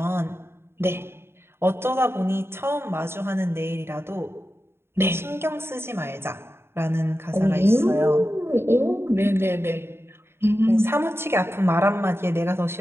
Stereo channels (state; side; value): late; left; 0.12 ms